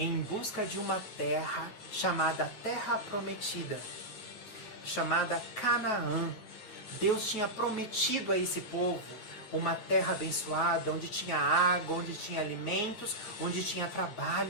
busca de uma terra chamada Terra Prometida, chamada Canaã. Deus tinha prometido a esse povo uma terra abençoada, onde tinha água, onde tinha alimentos, onde tinha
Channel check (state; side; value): late; right; 9.3 ms